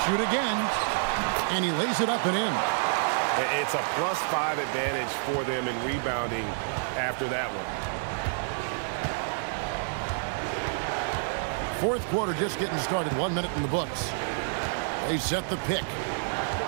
shoot again. And he lays it up and in. It's a +5 advantage for them in rebounding after that one. Fourth quarter just getting started. 1 minute in the books. They set the pick.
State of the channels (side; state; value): left; silent; digital silence